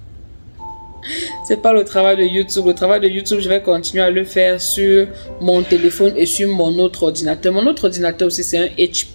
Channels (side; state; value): both; inverted; correlation -1.00